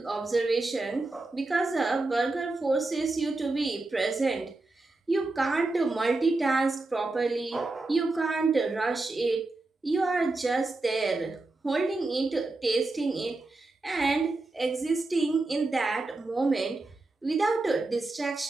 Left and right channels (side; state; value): left; quieter; 3.2 dB